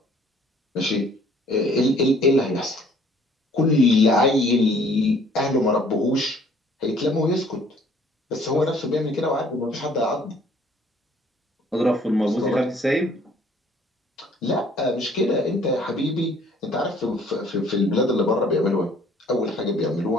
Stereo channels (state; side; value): normal; both; correlation 0.58